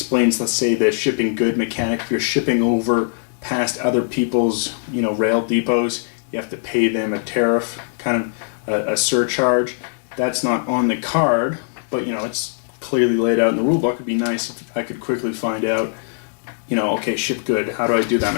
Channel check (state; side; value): silent; right; digital silence